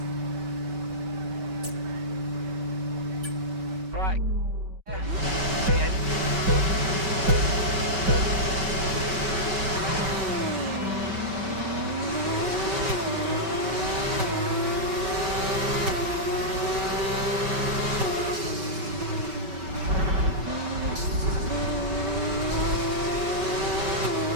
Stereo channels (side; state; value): left; late; 5.2 ms